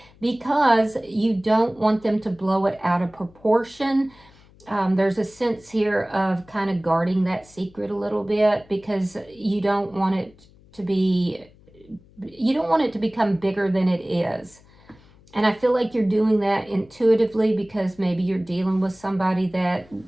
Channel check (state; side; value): noise; left; hum, 27 dB below the sound